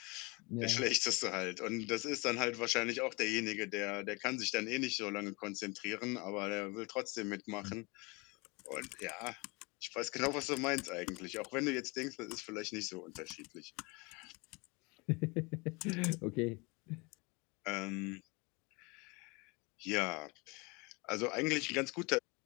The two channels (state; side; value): quieter; right; 27.6 dB